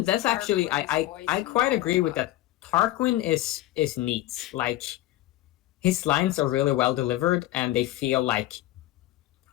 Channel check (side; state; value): right; quieter; 15.6 dB